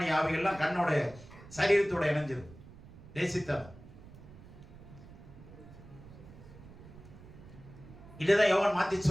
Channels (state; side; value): noise; right; rumble, 18 dB below the sound